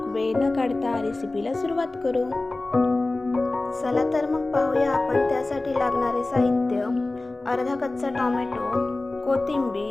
वेळ न काढता रेसिपीला सुरुवात करू। चला तर मग पाहूया आपण त्यासाठी लागणारे साहित्य। अर्धा कच्चा टोमॅटो,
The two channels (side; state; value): right; quieter; 3.0 dB